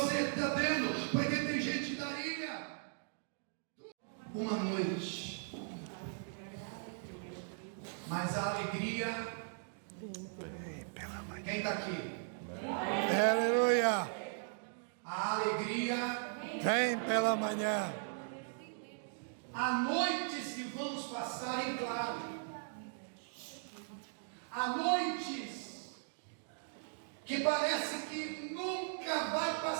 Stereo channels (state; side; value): silent; left; digital silence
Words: está tendo, porque tem gente que daria uma noite, mas a alegria. Quem está aqui? Aleluia. A alegria Vem pela manhã. há noites que vamos passar em claro, há noites que parece que nunca vai